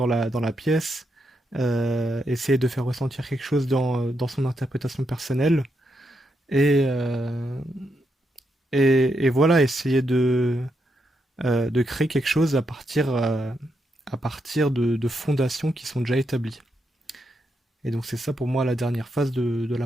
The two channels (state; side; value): normal; both; correlation 0.81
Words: la pièce, essayer de faire ressentir quelque chose dans son interprétation personnelle, et, euh, et voilà, essayer de créer quelque chose à partir de fondations qui sont déjà établies. Et donc c'est ça pour moi la dernière phase de